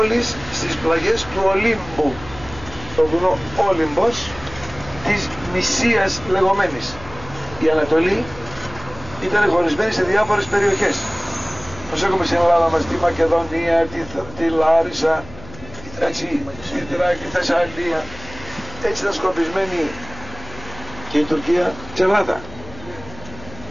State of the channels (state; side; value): noise; left; hum, 17 dB below the sound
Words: στις πλαγιές του Ολύμπου, το βουνό Όλυμπος της Μυσίας λεγόμενης. Η Ανατολή ήταν χωρισμένη σε διάφορες περιοχές. Όπως έχουμε στην Ελλάδα μας τη Μακεδονία, τη Λάρισα, έτσι, τη Θεσσαλία. Έτσι ήταν σκορπισμένη και η Τουρκία τσελάτα.